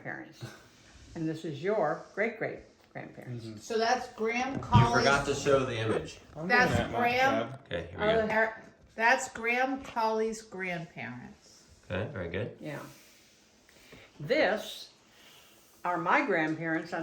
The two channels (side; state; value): both; identical; correlation 1.00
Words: and this is your great grandparents. So that's Graham You Colley's. forgot to show the image. I'm That's doing that, Mark, Graham. Dad. Okay, here we go. That's Graham Colley's grandparents. Okay, very good. Yeah. This are my grandparents on